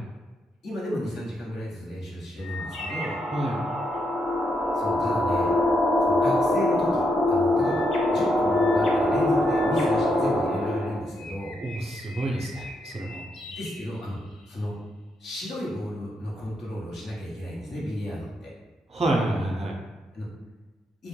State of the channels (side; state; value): both; normal; correlation 0.80